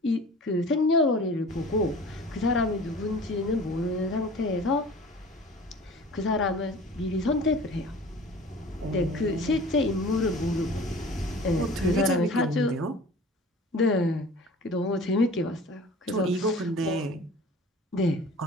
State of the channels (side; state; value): both; normal; correlation 0.43